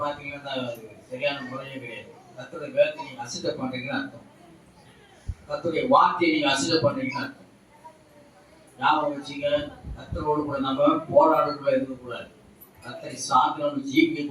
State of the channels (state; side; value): identical; both; correlation 1.00